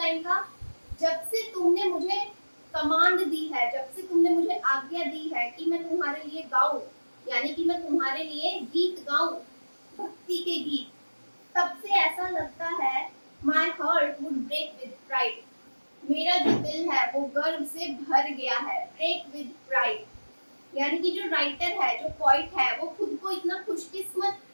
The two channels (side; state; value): both; inverted; correlation -1.00